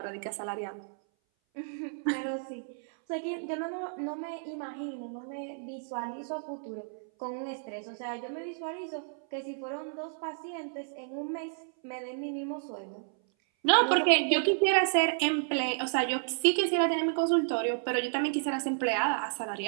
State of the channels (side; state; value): left; silent; 57 dB below the other